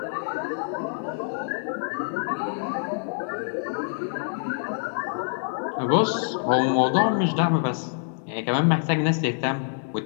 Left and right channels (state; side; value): silent; right; digital silence